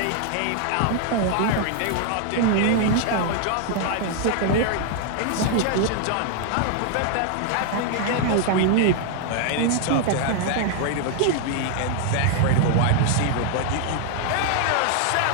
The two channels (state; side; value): different; both; correlation 0.00